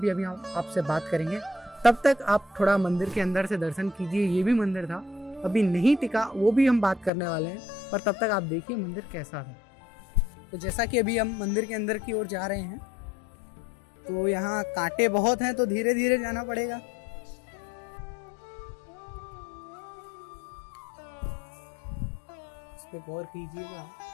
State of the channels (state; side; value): drops out; right; at 7.1 s